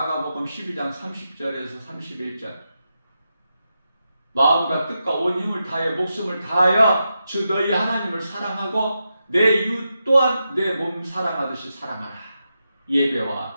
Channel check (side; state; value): both; inverted; correlation -0.88